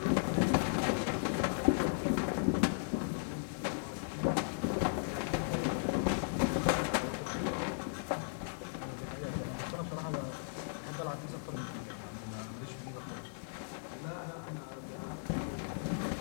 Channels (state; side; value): silent; right; digital silence